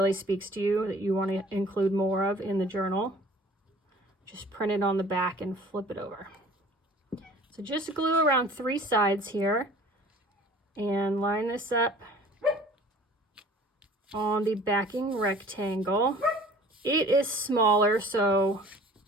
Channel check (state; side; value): normal; both; correlation 0.49